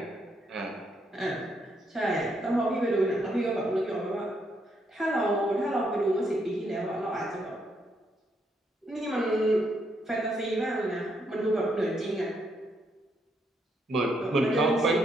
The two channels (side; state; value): both; normal; correlation 0.76